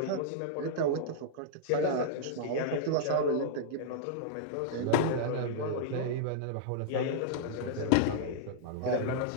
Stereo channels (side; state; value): both; different; correlation -0.02